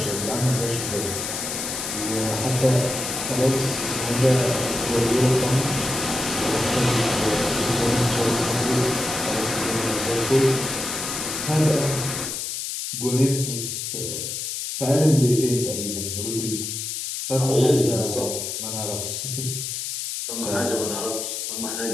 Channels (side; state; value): left; noise; hiss, 4 dB below the sound